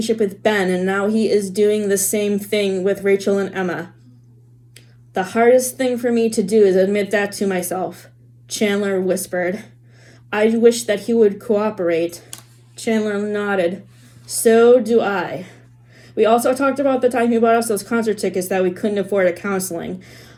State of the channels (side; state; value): both; identical; correlation 1.00